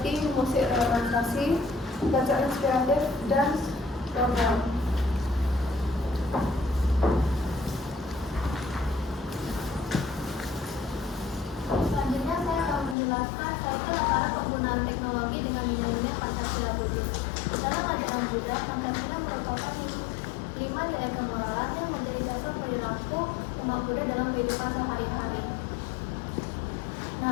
musik relaksasi, bacaan inspiratif, dan program. Selanjutnya saya akan menjelaskan cycle antara penggunaan teknologi dengan nilai-nilai Pancasila Buddhis. Dalam ajaran Buddha, Pancasila merupakan 5 nilai kemoralan yang menjadi dasar perilaku umat Buddha dalam kehidupan sehari-hari.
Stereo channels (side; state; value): right; drops out; at 13.0 s